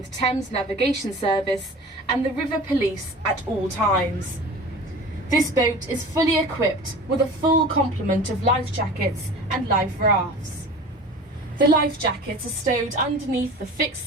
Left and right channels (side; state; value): both; normal; correlation 0.38